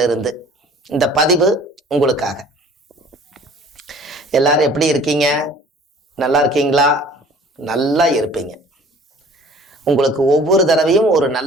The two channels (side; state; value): both; normal; correlation 0.50